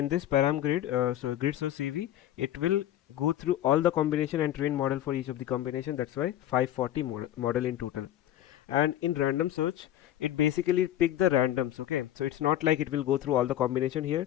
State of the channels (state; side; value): quieter; right; 12.5 dB